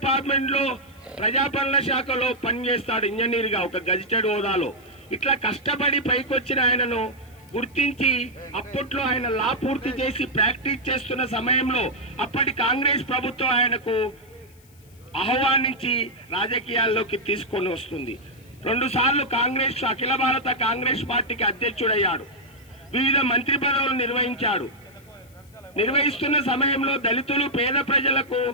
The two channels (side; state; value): left; noise; hiss, 29 dB below the sound